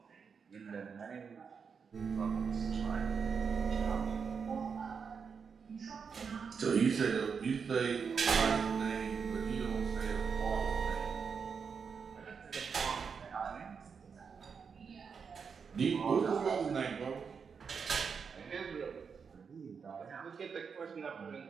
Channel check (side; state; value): left; quieter; 6.0 dB